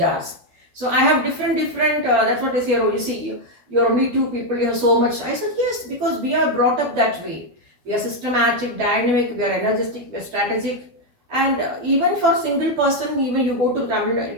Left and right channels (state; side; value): late; left; 12 ms